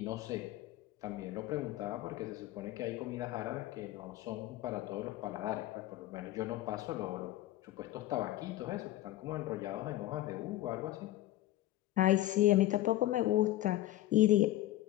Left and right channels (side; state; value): right; quieter; 15.2 dB